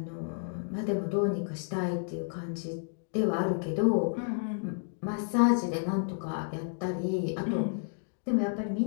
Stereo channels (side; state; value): right; silent; digital silence